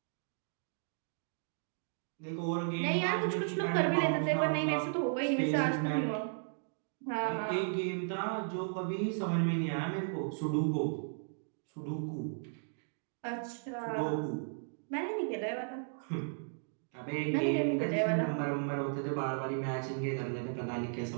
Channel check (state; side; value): silent; left; digital silence